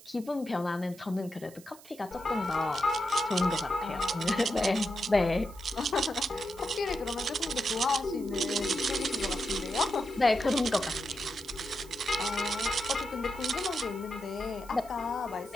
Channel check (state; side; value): noise; right; hiss, 21 dB below the sound